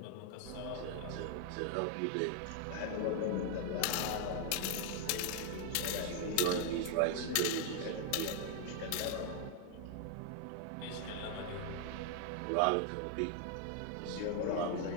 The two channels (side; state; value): both; different; correlation 0.00